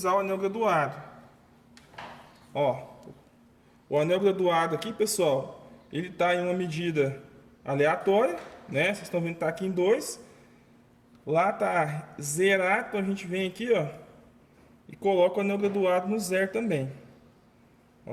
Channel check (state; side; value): identical; both; correlation 1.00